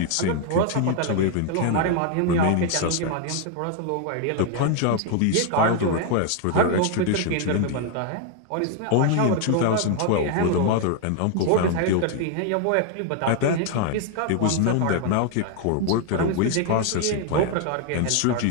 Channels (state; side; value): different; both; correlation 0.00